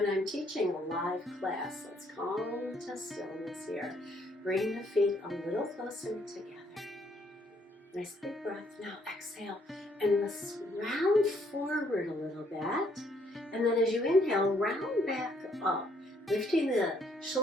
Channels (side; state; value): both; normal; correlation 0.68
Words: I'm teaching a live class, let's come to stillness here. Bring the feet a little closer together. Nice big breath. Now exhale and let's round forward a little bit. And then as you inhale, round back up, lifting the